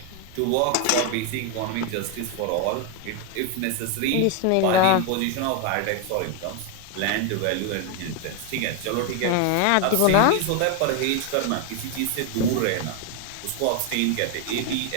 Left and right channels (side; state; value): both; different; correlation 0.01